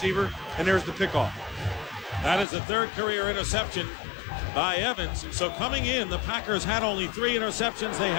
and there's the pickoff. That is the 3rd career interception by Evans. So coming in, the Packers had only 3 interceptions. They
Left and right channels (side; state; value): right; drops out; at 2.5 s